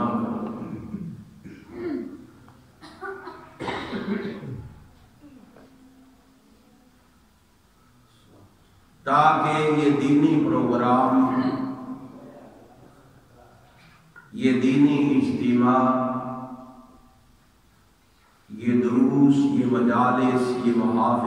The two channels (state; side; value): identical; both; correlation 1.00